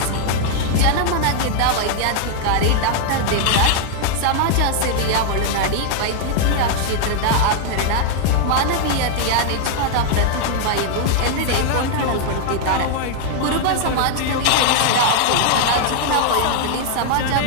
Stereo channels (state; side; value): different; both; correlation 0.00